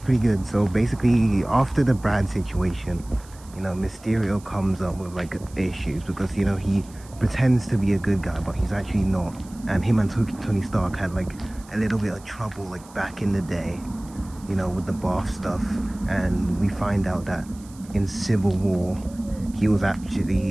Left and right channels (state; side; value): noise; right; hiss, 23 dB below the sound